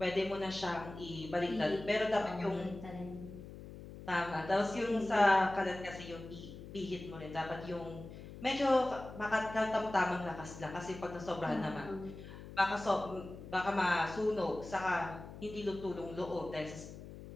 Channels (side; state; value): left; noise; hum, 13 dB below the sound